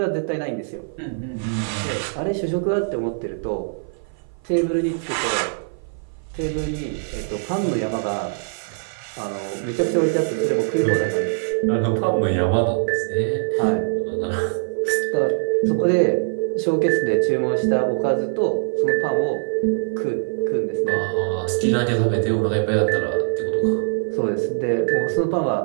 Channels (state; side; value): silent; left; 55 dB below the other